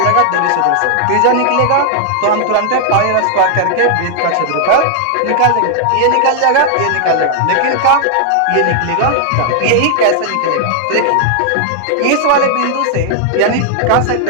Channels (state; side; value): different; both; correlation 0.00